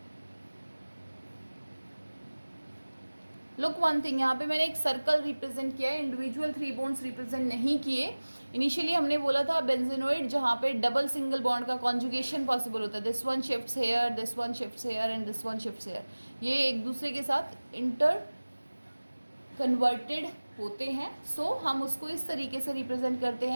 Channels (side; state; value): both; inverted; correlation -1.00